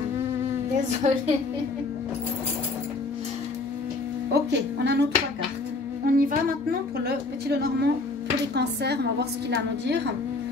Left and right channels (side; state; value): right; quieter; 3.5 dB